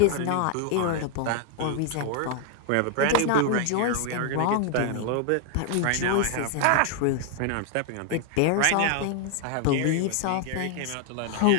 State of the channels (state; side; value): different; both; correlation 0.00